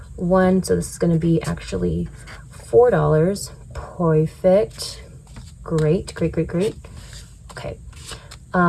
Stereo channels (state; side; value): identical; both; correlation 1.00